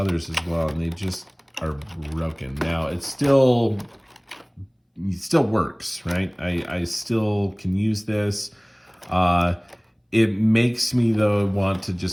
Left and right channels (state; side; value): identical; both; correlation 1.00